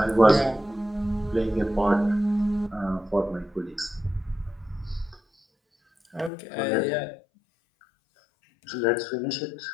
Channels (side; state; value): right; drops out; at 6.3 s